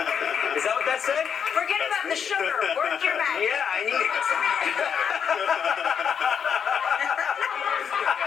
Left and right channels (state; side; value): quieter; right; 7.3 dB